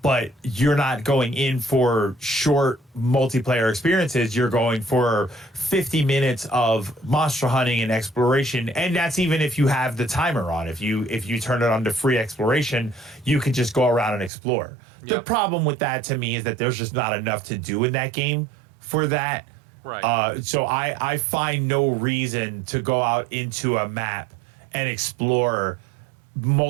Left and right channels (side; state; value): left; drops out; at 14.3 s